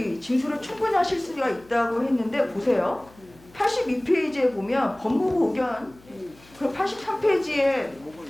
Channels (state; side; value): noise; left; hum, 26 dB below the sound